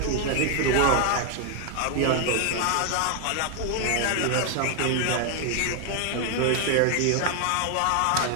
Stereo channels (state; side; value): different; both; correlation 0.00